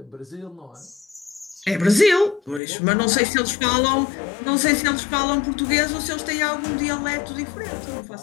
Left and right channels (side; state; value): right; drops out; at 2.6 s